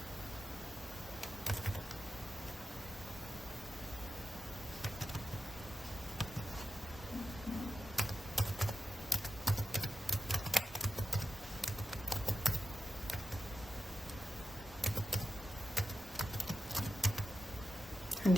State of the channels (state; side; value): normal; both; correlation 0.90